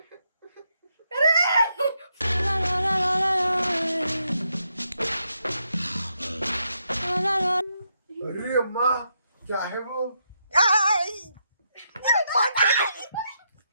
अरे अम्मा क्या है वो?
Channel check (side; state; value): both; inverted; correlation -0.79